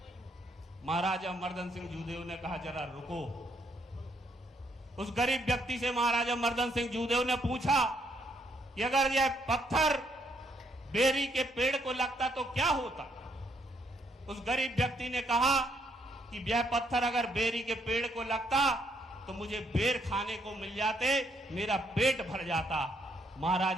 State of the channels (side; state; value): both; normal; correlation 0.72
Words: महाराजा मर्दन सिंह जूदेव ने कहा जरा रुको। उस गरीब व्यक्ति से महाराजा मर्दन सिंह जूदेव ने पूछा कि अगर यह पत्थर बेरी के पेड़ को लगता तो क्या होता। उस गरीब व्यक्ति ने कहा कि यह पत्थर अगर बेरी के पेड़ को लगता तो मुझे बेर खाने को मिल जाते, मेरा पेट भर जाता।